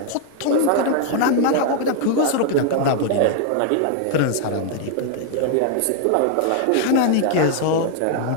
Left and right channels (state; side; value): different; both; correlation 0.00